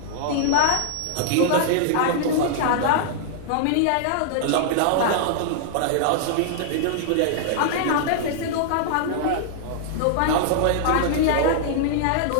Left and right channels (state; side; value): different; both; correlation -0.01